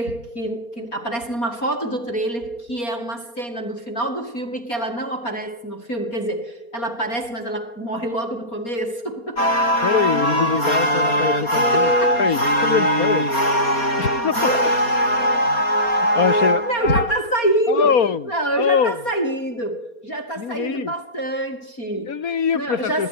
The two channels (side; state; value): right; late; 4.3 ms